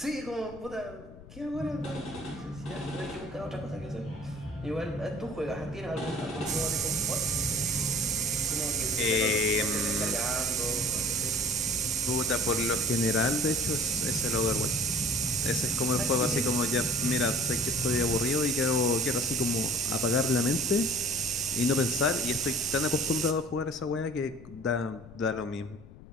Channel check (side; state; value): left; noise; rumble, 18 dB below the sound